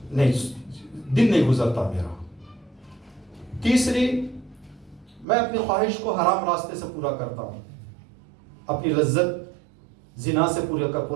نہیں، دن نہیں گزرتا میرا. تیسری، میں اپنی خواہش کو حرام راستے سے پورا کرتا ہوں، اپنی لذت زنا سے پورا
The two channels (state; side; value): drops out; left; at 5.2 s